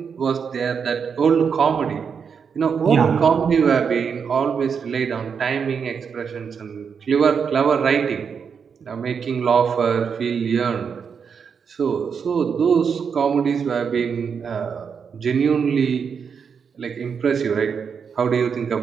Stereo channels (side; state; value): left; quieter; 6.5 dB